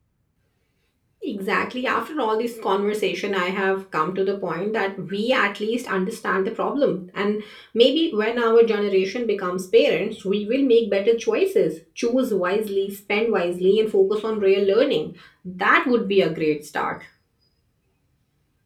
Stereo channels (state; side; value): identical; both; correlation 1.00